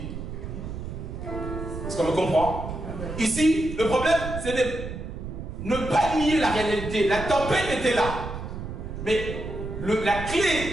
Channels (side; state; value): right; noise; rumble, 7 dB below the sound